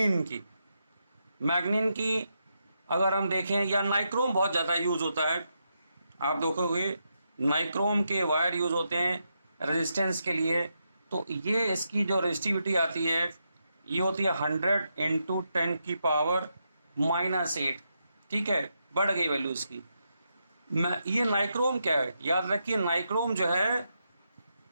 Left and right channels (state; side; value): inverted; both; correlation -0.83